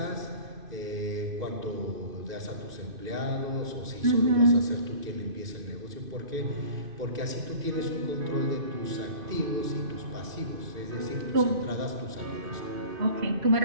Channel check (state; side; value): late; left; 2.5 ms